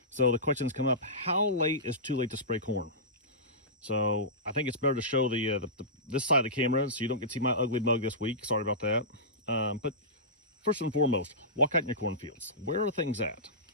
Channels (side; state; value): both; normal; correlation -0.19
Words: So the questions come up, how late is too late to spray corn? So I think it's better to show this side of the camera so you don't get to see my ugly mug this week. Sorry about that. But first and foremost, walk out in your cornfields. Where are things at?